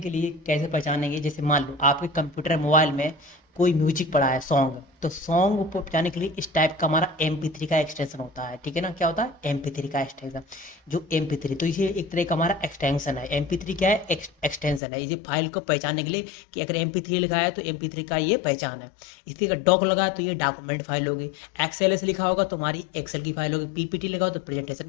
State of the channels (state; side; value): drops out; right; at 14.8 s